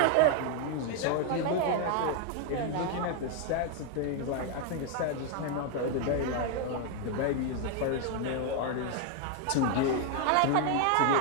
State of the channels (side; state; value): both; different; correlation 0.01